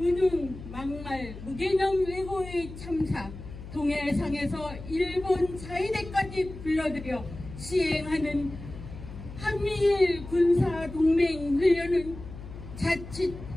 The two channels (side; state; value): left; noise; hum, 13 dB below the sound